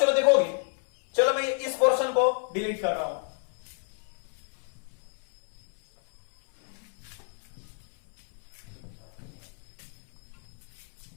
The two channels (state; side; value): silent; right; 58 dB below the other